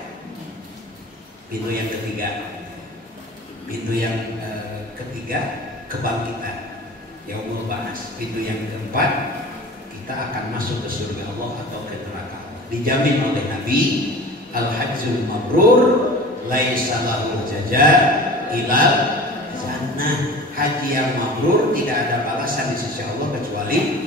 Pintu yang ketiga, kebangkitan, yaumul ba'ats. Pintu yang keempat, kita akan masuk ke surga Allah atau ke neraka Allah. Dijamin oleh Nabi, al-hajjul mabrur laisa lahu jazaa ilal jannah. Haji yang mabrur tidak ada balasan di sisi Allah kecuali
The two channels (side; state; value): both; normal; correlation 0.39